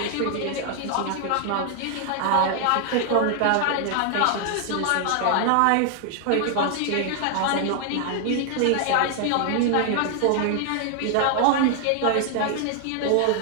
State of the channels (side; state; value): both; different; correlation 0.00